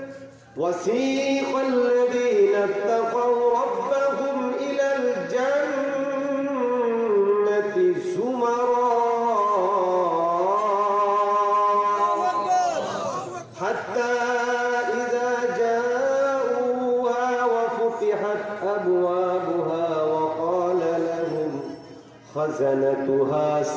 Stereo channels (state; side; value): identical; both; correlation 1.00